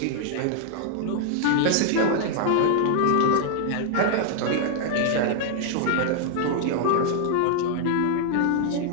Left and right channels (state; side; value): different; both; correlation 0.00